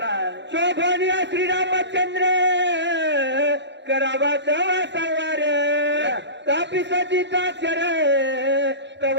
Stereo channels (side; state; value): left; late; 0.52 ms